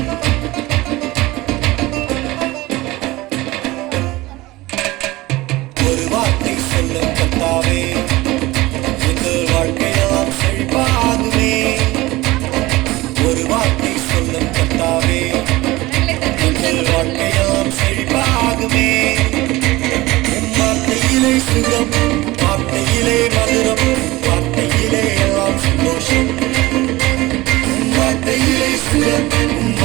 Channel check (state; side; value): quieter; left; 19.6 dB